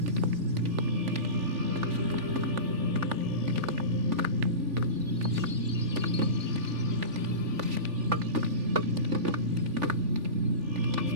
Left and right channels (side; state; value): left; late; 3.4 ms